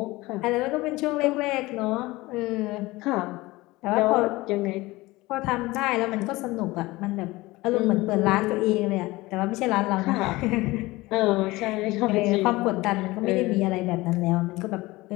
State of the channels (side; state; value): right; quieter; 20.4 dB